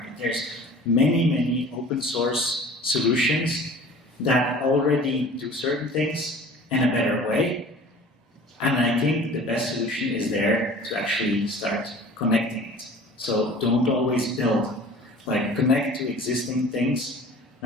There's many open source solutions that already do certain things in a better way, And I think the best solution is there to actually start connecting it. So don't always build, like connect to existing things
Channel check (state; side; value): normal; both; correlation 0.44